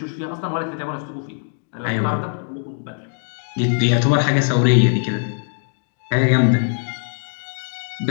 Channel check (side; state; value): right; silent; digital silence